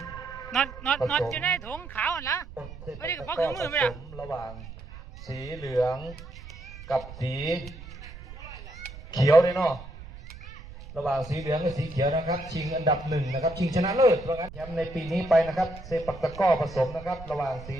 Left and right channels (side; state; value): right; noise; rumble, 15 dB below the sound